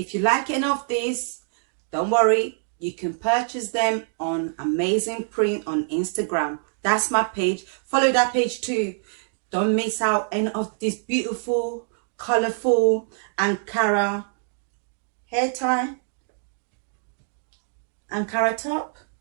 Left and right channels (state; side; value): silent; left; 58 dB below the other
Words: you like any of these, don't worry, you can purchase them on Amazing Print on Instagram. That's my page. Follow that page too. Don't miss out any of this beautiful, colorful Ankara hair tie, Ankara top.